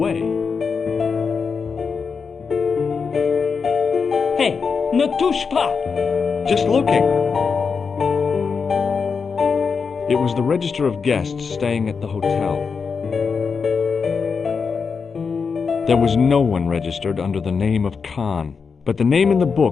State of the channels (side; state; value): right; quieter; 5.5 dB